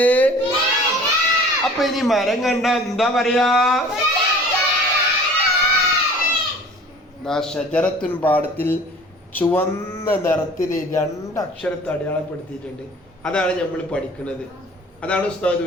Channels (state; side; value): normal; both; correlation 0.47